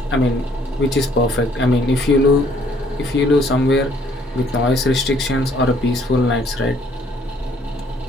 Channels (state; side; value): normal; both; correlation 0.63